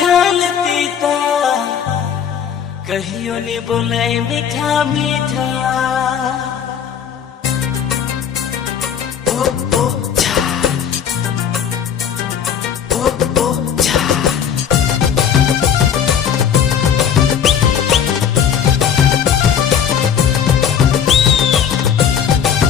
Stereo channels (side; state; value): right; quieter; 8.2 dB